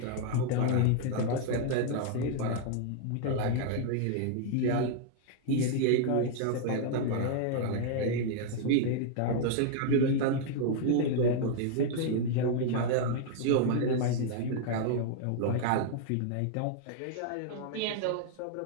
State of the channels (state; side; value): different; both; correlation 0.00